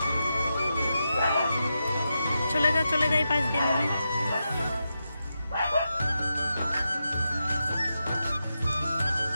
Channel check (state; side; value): inverted; both; correlation -0.88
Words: চলে যা, চলে যাই পাশ দিয়ে নেবে।